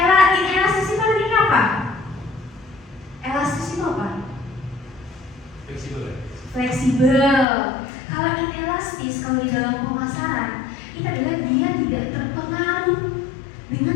itu artinya apa? Elastis itu apa? Fleksibel. Kalau inelastis, kalau di dalam pemasaran, itu adalah dia tidak terpengaruh dengan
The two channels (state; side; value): drops out; right; at 7.5 s